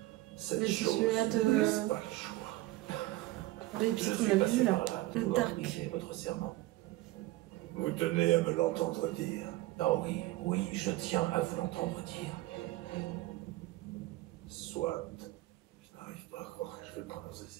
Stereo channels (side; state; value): left; quieter; 17.8 dB